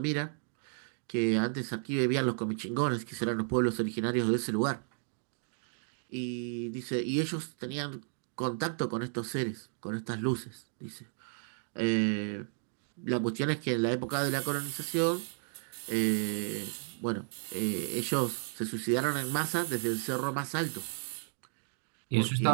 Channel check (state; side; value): silent; left; 56 dB below the other